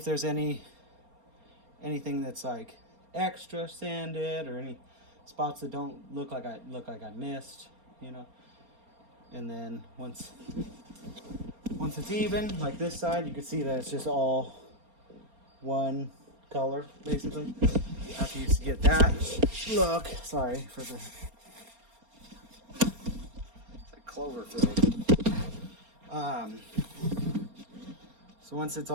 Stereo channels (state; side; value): late; left; 4.3 ms